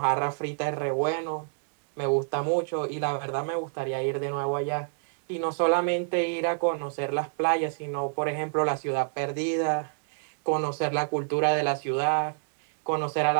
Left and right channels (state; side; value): silent; left; digital silence